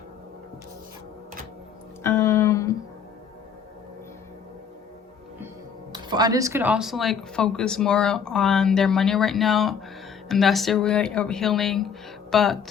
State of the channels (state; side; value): quieter; right; 7.0 dB